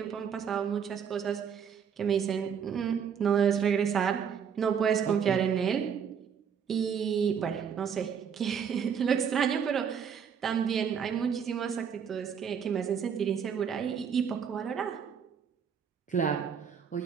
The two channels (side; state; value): left; quieter; 7.4 dB